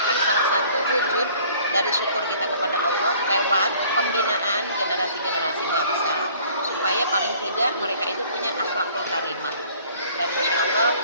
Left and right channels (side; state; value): both; inverted; correlation -0.54